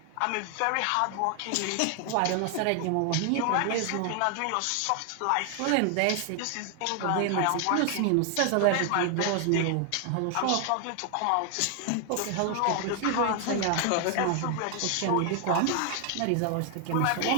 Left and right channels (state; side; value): different; both; correlation 0.00